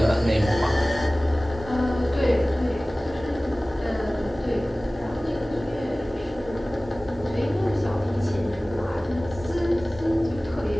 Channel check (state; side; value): normal; both; correlation 0.98